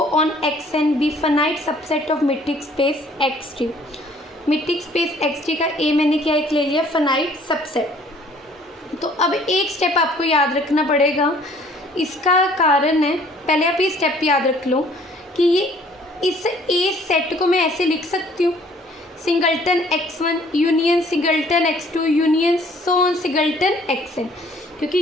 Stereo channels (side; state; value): both; normal; correlation 0.57